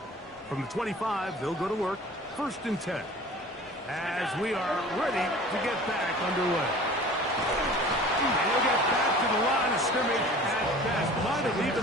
From the 25, they'll go to work. 1st and 10. As we are ready to get back underway. And he'll get back to the line of scrimmage at best. Might have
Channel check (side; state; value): both; normal; correlation 0.44